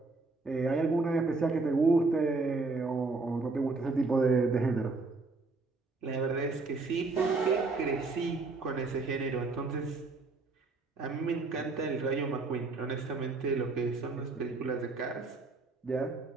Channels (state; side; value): quieter; left; 3.7 dB